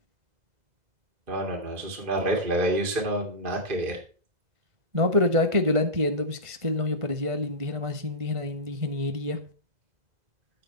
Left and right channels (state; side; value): late; left; 2.0 ms